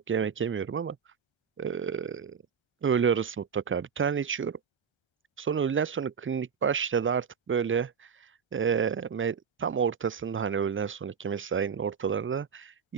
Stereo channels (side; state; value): left; quieter; 6.6 dB